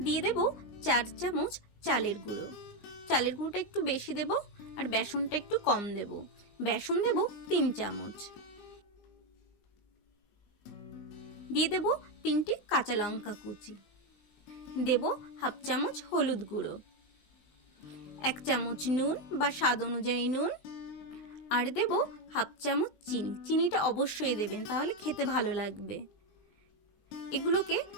দিয়ে দেব 4 চামচ চালের গুঁড়ো। চালের গুঁড়োটা একটু বেশি দেব আর বেসনটা একটু কম দেব। বেসন দেব 3 চামচ। দিয়ে দেব 3টে কাঁচা লঙ্কা কুচি। দেব হাফ চামচ হলুদ গুঁড়ো, 1 চামচ নুন বা স্বাদ অনুযায়ী নুন, আর দেব হাফ চামচ চিনি। চিনিটা অবশ্যই দেবেন, তাহলে খেতে ভালো লাগবে। এগুলোকে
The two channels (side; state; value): right; late; 19 ms